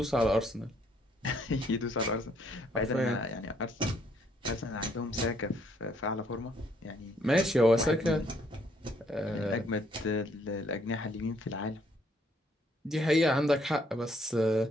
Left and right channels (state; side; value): normal; both; correlation 0.68